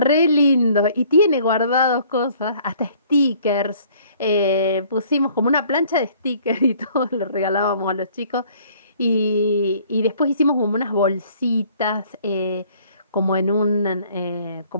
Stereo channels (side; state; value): both; inverted; correlation -0.57